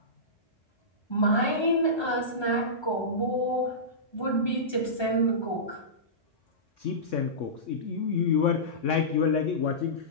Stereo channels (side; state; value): right; late; 1.3 ms